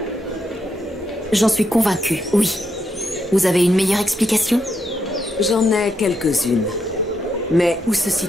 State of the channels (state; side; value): normal; both; correlation 0.80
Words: J'en suis convaincue, oui. Vous avez une meilleure explication? J'en ai quelques-unes. Mais où se